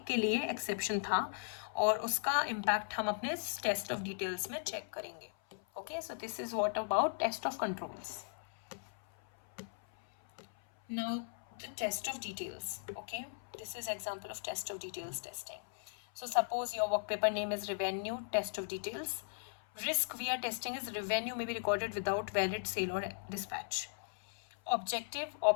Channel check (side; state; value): right; silent; 53 dB below the other